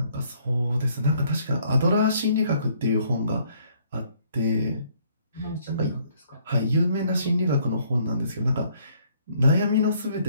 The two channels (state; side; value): inverted; both; correlation -0.64